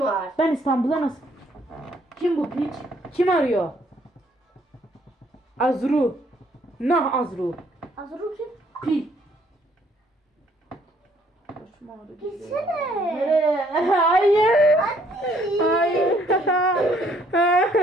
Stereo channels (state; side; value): normal; both; correlation 0.65